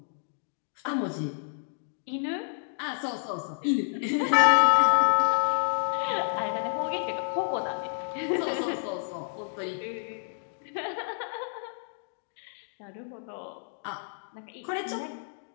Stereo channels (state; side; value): silent; right; digital silence